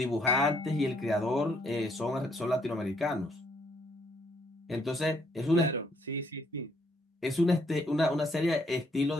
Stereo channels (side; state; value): both; normal; correlation 0.69